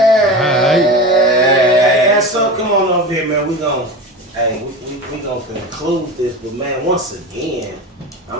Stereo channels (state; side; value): normal; both; correlation 0.28